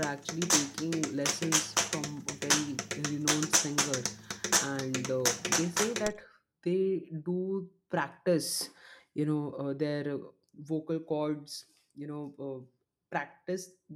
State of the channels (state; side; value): identical; both; correlation 1.00